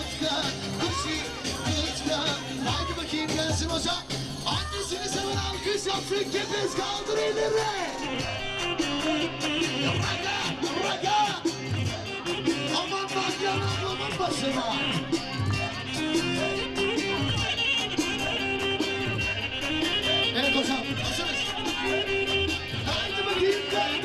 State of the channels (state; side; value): identical; both; correlation 1.00